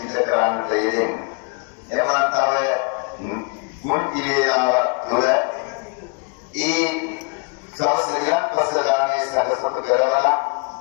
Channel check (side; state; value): right; quieter; 35.0 dB